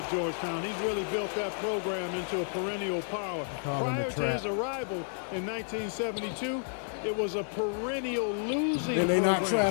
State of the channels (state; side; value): silent; right; digital silence